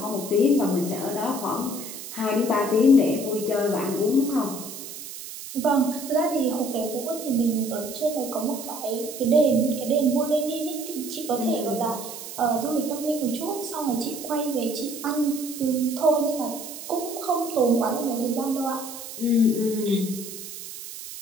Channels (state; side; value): noise; right; hiss, 11 dB below the sound